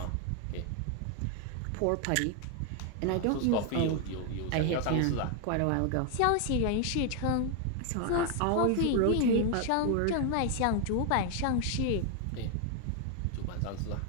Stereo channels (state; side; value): different; both; correlation 0.00